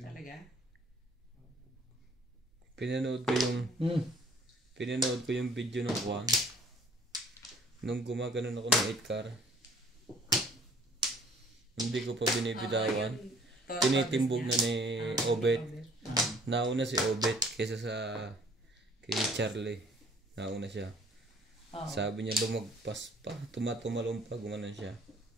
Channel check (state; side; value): normal; both; correlation 0.56